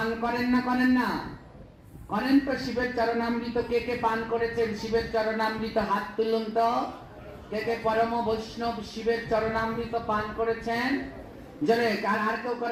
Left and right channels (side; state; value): both; identical; correlation 1.00